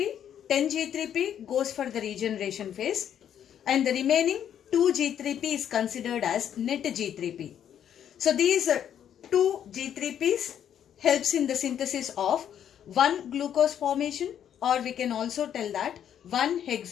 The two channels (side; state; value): right; quieter; 9.6 dB